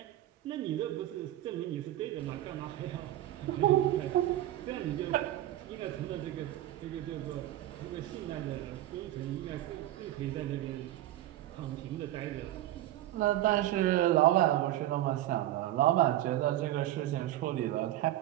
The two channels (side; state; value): left; quieter; 14.2 dB